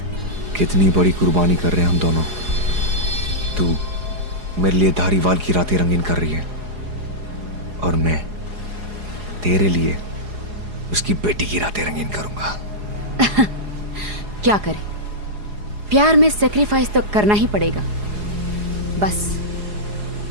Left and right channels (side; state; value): left; late; 4.8 ms